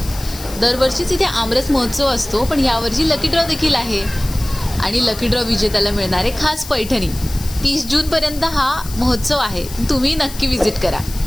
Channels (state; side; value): noise; left; hiss, 14 dB below the sound